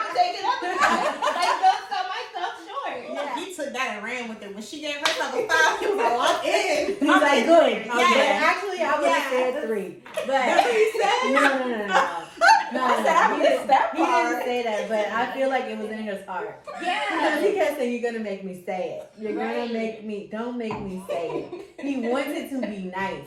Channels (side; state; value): both; identical; correlation 1.00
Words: take it up a notch. Like, don't sell myself short. Yeah. He took that and ran with it. When she gave herself a 5, he was like, well, I'm in. He's like, good. Yeah. But actually, I would have said 3. But That's what he said? no. I said, I missed that He didn't part. say that, but I feel like it was in his heart. Because Yeah. he kept saying, you're going to make me say it. You're going Right. to make me, don't make me say it. He wants it to be nice.